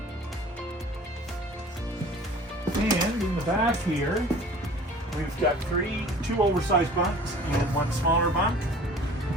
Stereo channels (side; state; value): both; normal; correlation 0.45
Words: And in the back here, we've got two oversized bunks and one smaller bunk.